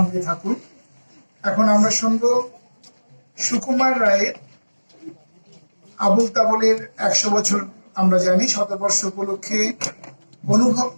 থাকুন। এখন আমরা শুনবো সুকুমার রায়ের আবুল তাবলের 100 বছর। আমরা জানি শতবর্ষ উপলক্ষে অনুভব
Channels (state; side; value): inverted; both; correlation -1.00